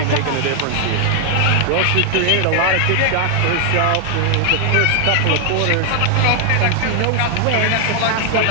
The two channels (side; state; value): both; different; correlation 0.00